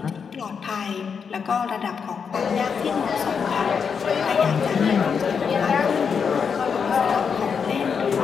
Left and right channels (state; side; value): quieter; right; 6.3 dB